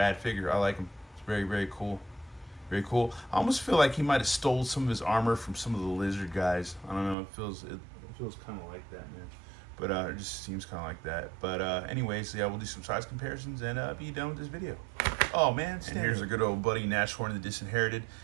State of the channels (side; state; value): left; drops out; at 7.2 s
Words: figure. I like him. It's very, very cool. Very cool. I almost feel like he might have stole some of his armor from some of the lizard guys. I don't know. It feels kind of like that, man. But it just seems kind of like that. But anyways, yeah, we'll do some size comparisons and be done with this video. Oh man, and here's a good old buddy, Nashhorn The Disinherited,